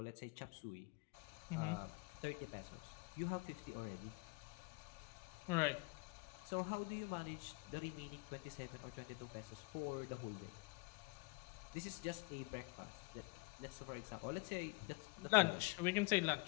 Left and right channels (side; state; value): right; quieter; 26.2 dB